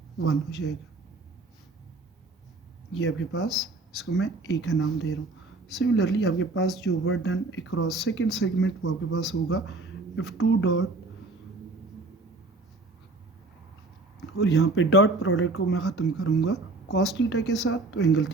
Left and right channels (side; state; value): left; quieter; 3.2 dB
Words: 1 हो जाएगा। ये आपके पास, इसको मैं ए का नाम दे रहा हूँ। सिमिलरली आपके पास जो work done across second segment वो आपके पास होगा F2 डॉट, और यहाँ पे डॉट प्रोडक्ट को मैं ख़त्म करूँगा कॉस थीटा के साथ, तो एंगल